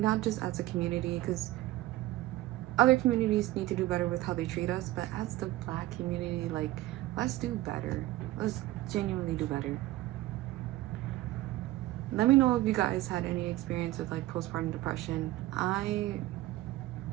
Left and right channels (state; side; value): quieter; left; 16.6 dB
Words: not just as a community, because other communities need to do better with how they treat us, but as the Black community, like, let's do better. Let's genuinely do better. Let me know if you guys had any experience with, like, postpartum depression. I